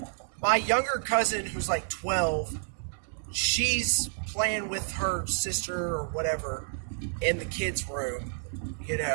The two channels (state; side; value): silent; left; digital silence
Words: My younger cousin, who's like 12, she's playing with her sister or whatever in the kids' room. You